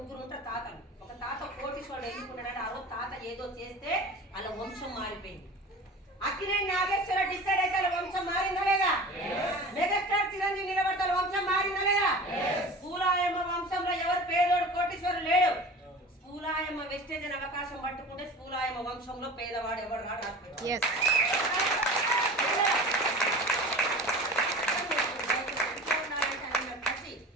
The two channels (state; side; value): normal; both; correlation 0.36